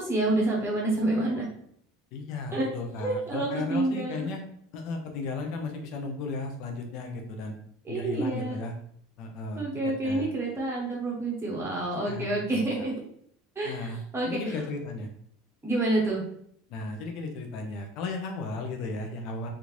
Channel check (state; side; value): normal; both; correlation 0.50